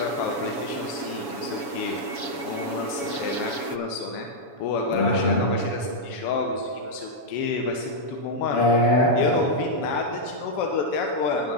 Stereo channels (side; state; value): right; late; 7.1 ms